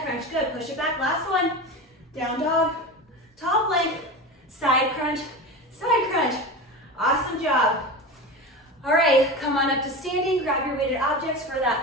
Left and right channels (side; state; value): both; normal; correlation 0.26